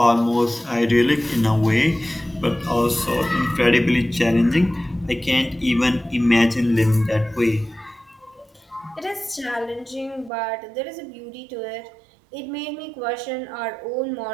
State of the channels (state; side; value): drops out; left; at 10.3 s